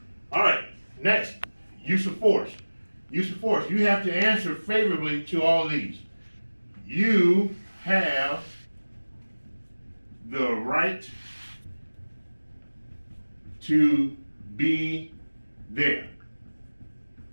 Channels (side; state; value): both; inverted; correlation -1.00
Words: All right, next, use of force. Use of force. You have to answer favorably to all of these. You have the right to be there.